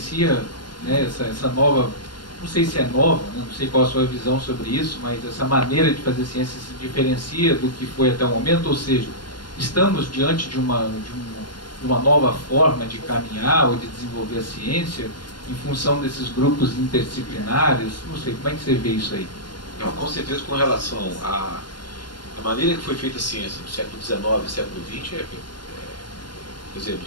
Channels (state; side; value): late; right; 0.72 ms